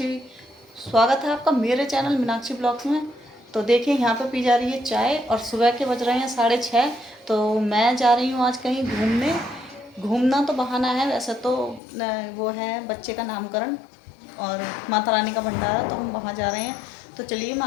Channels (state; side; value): drops out; right; at 11.8 s